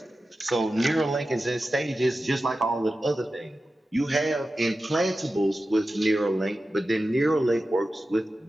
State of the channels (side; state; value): both; normal; correlation 0.93